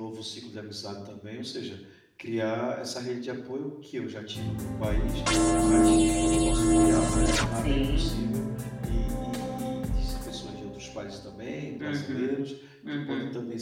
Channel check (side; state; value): both; identical; correlation 1.00